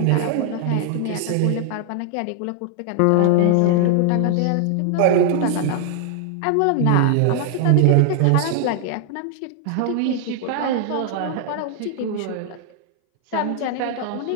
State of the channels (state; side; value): different; both; correlation 0.00